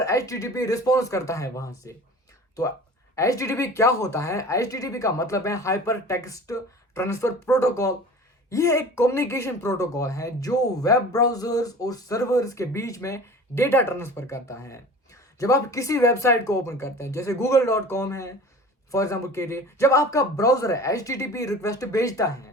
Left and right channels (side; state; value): both; normal; correlation 0.40